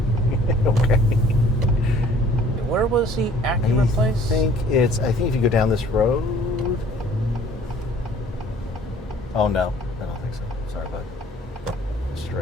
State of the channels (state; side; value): normal; both; correlation 0.54